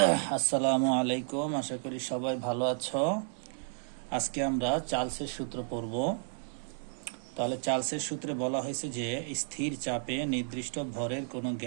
আসসালামু আলাইকুম, আশা করি সবাই ভালো আছো। আজকে আমরা চার্লসের সূত্র পড়ব। তাহলে চার্লসের সূত্রে বলা হয়েছে যে স্থির চাপে নির্দিষ্ট ভরের কোনো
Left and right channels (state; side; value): silent; left; 56 dB below the other